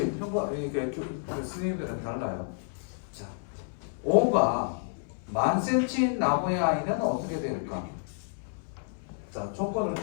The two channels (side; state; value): right; silent; 58 dB below the other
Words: 이게 스님들은 달라요. 자, 5가 1000cm인 나무의 I는 어떻게 될까? 자, 조건을